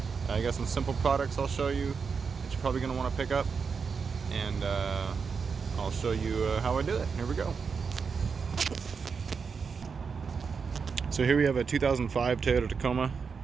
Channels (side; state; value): left; quieter; 5.6 dB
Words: I got some simple products I'll show you that you're probably going to want to pick up, and I'll show you how I do it. Here we go. So here we have a 2005 Toyota Tacoma,